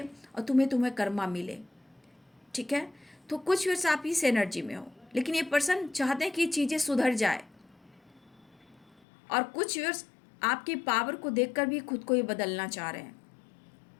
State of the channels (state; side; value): drops out; right; at 9.0 s